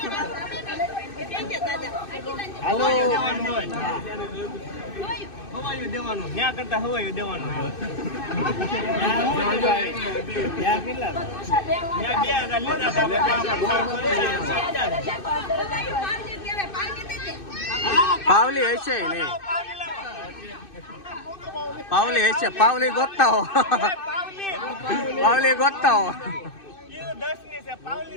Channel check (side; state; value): right; late; 2.6 ms